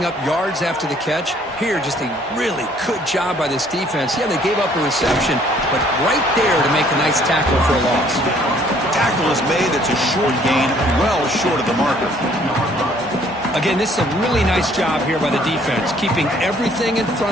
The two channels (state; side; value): normal; both; correlation 0.61